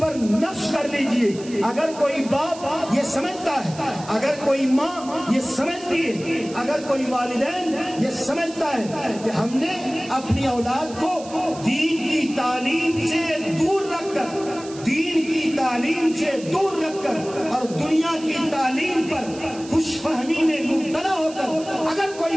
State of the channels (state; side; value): noise; right; hiss, 17 dB below the sound